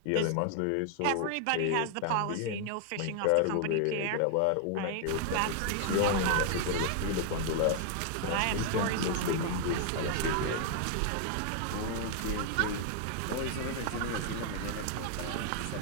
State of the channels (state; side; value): different; both; correlation 0.00